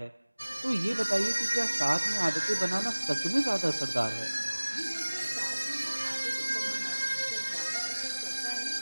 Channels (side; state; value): both; inverted; correlation -1.00